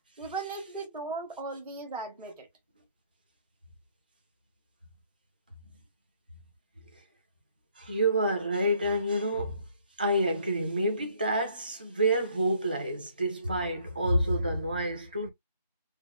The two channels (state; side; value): inverted; both; correlation -0.65